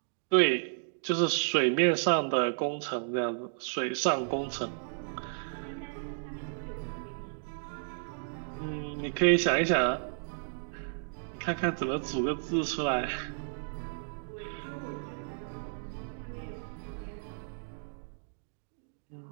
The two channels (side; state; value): left; silent; digital silence